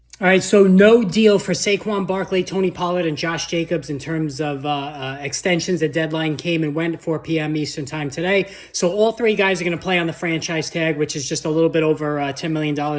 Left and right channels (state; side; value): identical; both; correlation 1.00